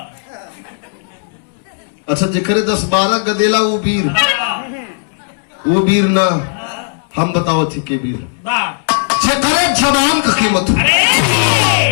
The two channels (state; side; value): silent; right; 68 dB below the other